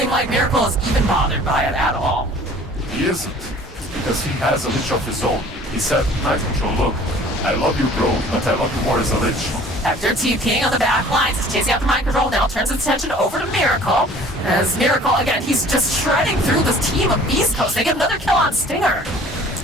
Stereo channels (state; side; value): normal; both; correlation 0.50